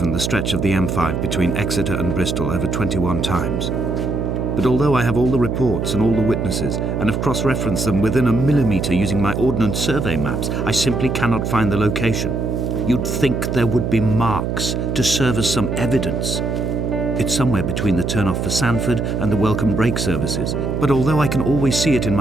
the stretch of the M5 between Exeter and Bristol over 21 times. But although I have all the reports and all the witnesses and have cross-referenced them within a millimetre using my Ordnance Survey maps, I simply cannot find the location. You'd think there would be marks to serve as some evidence. It's somewhere between the turn-off for Sanford and the welcome brake services. But although I can always see it in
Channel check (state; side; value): noise; right; hum, 1 dB below the sound